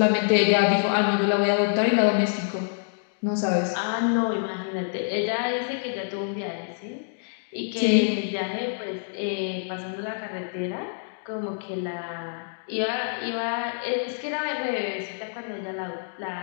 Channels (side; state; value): right; silent; digital silence